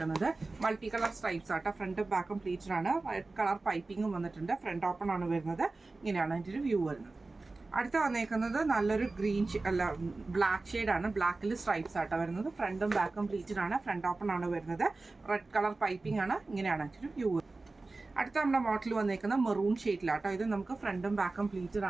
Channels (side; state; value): left; quieter; 3.4 dB